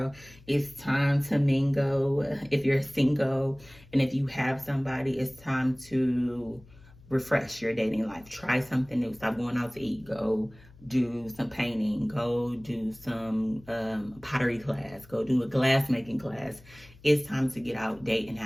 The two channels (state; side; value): noise; left; hum, 24 dB below the sound